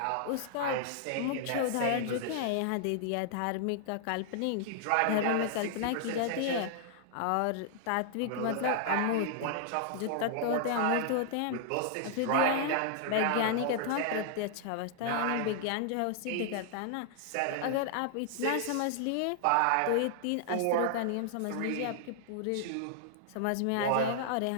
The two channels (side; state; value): both; different; correlation -0.01